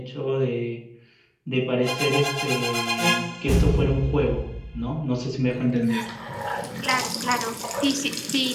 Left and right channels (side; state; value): both; identical; correlation 1.00